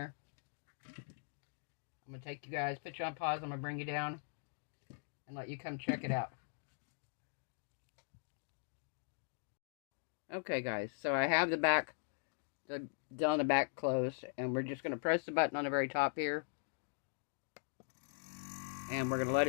I'm going to take you guys, put you on pause. I'm going to bring you down and let you come check it out. Okay guys, so I have the back, down the back closed, and we're just going to press the button on the very top here, and we're going to let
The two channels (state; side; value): silent; right; digital silence